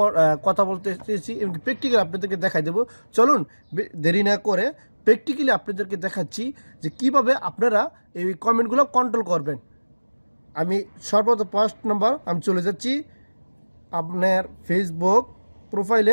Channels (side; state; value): both; inverted; correlation -1.00